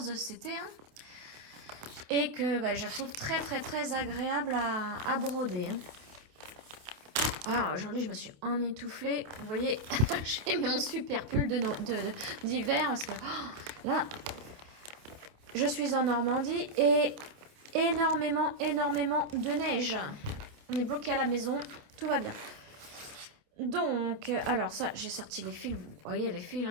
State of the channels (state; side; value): late; left; 27 ms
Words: CT1 et que je trouve très agréable à broder. Alors aujourd'hui je me suis emmitouflée, vous voyez, j'ai mis mon super pull d'hiver parce que là je suis en Normandie et énormément de neige. On est bloqué à la maison, tout va bien. Donc, alors ça j'ai sorti les fils, vous voyez les fils,